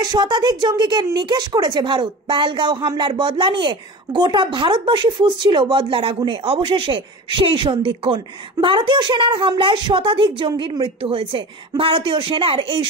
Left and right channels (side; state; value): both; normal; correlation 0.33